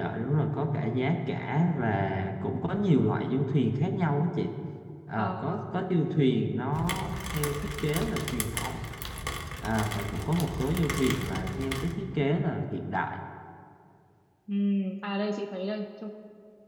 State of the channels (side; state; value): both; identical; correlation 1.00